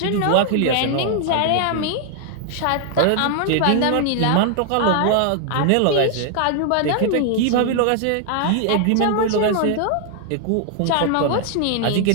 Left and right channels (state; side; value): different; both; correlation 0.00